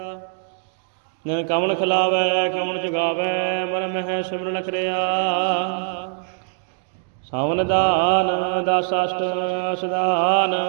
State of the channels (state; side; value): silent; left; digital silence